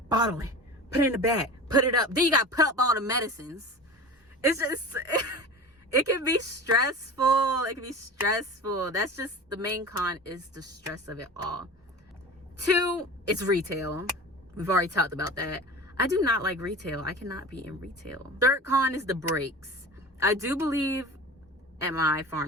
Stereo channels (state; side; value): normal; both; correlation 0.33